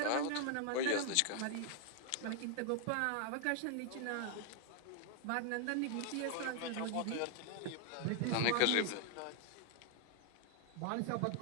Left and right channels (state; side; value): different; both; correlation 0.00